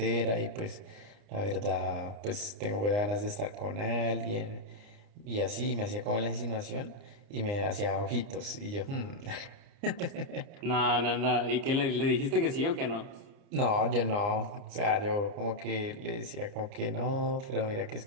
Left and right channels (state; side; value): late; left; 29 ms